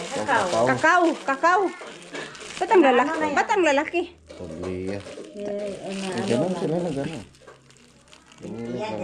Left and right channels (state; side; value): identical; both; correlation 1.00